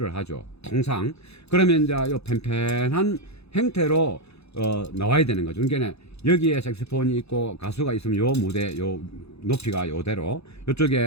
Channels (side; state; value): right; late; 0.79 ms